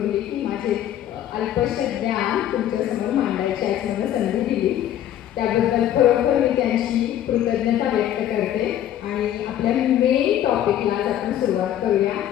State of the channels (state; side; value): quieter; right; 11.4 dB